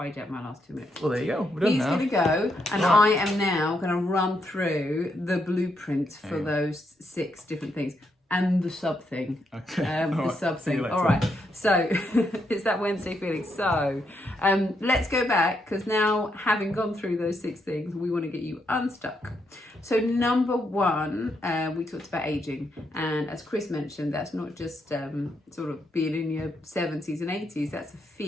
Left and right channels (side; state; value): both; normal; correlation 0.79